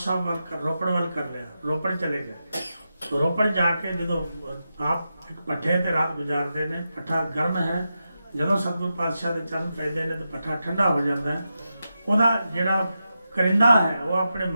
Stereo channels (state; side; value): inverted; both; correlation -0.89